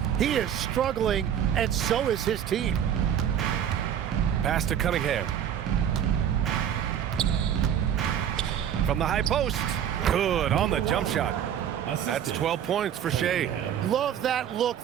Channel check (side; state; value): left; quieter; 9.5 dB